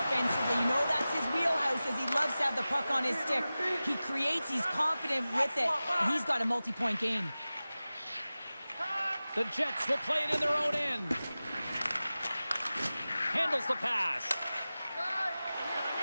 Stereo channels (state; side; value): inverted; both; correlation -0.96